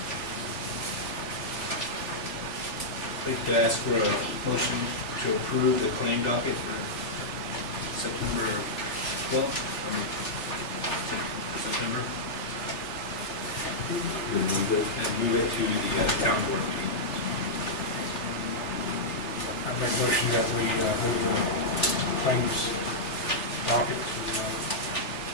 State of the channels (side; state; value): right; late; 3.4 ms